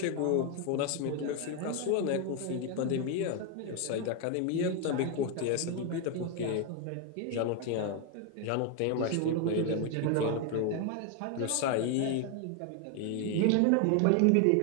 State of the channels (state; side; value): different; both; correlation 0.01